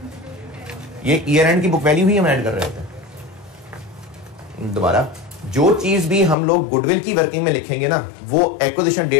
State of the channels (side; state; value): right; drops out; at 6.4 s